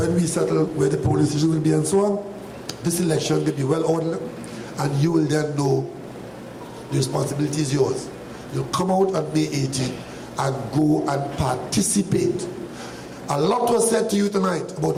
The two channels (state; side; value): identical; both; correlation 1.00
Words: we settle where the polling station will be and so on. This election will be well ordered, and you will then know the responsibility is yours. You'll come out on May 18th and go and participate. A lot was said to you tonight about